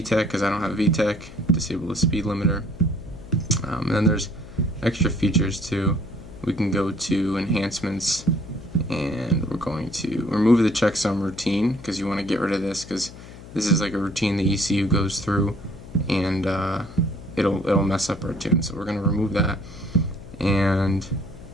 because I don't have VTEC. Disable the speed limiter. And then there's extra features too. We can go to enhancements, and we're going to remove the checksum routine because you want to get rid of this because this is like a routine the ECU goes through, and it'll mess up our tune. So we're going to remove that, and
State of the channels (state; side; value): noise; left; hum, 16 dB below the sound